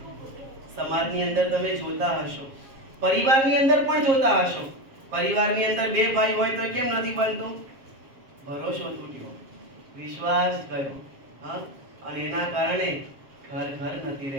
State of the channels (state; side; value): late; left; 7.3 ms